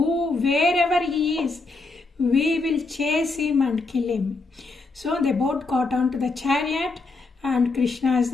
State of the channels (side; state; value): right; quieter; 3.6 dB